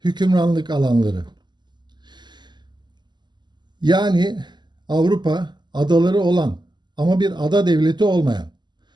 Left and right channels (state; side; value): late; left; 0.21 ms